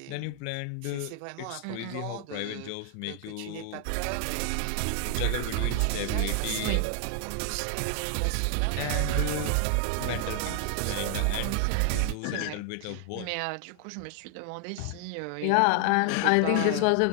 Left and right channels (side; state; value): both; different; correlation 0.00